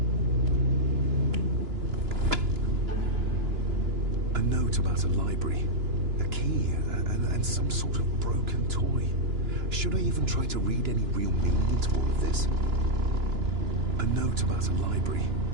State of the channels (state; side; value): late; left; 2.9 ms